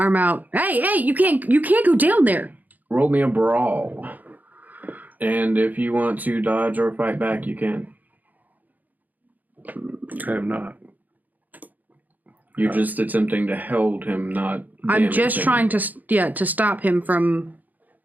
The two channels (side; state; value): left; late; 0.082 ms